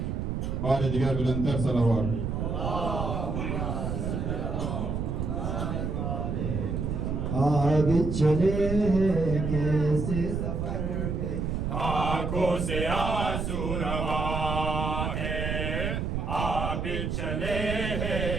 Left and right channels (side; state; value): right; noise; rumble, 1 dB below the sound